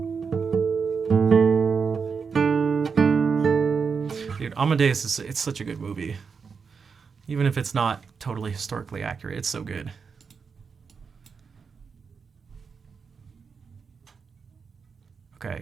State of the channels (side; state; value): left; quieter; 5.7 dB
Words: Dude, Amadeus it's such a good movie. Even if it's not totally historically accurate, it's so good.